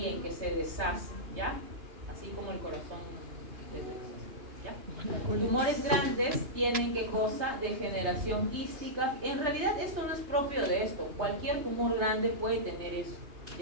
que se deshace, ¿ya? Así como el corazón ¿ya? Tumores grandes tienen ¿qué cosa? Degeneración quística. En realidad esto no es propio de esto. Cualquier tumor grande puede tener eso,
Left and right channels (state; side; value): late; left; 3.2 ms